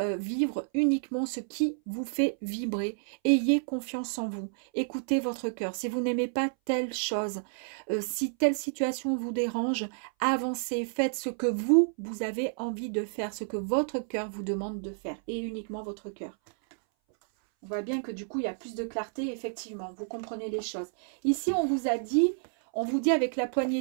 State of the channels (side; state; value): left; silent; 58 dB below the other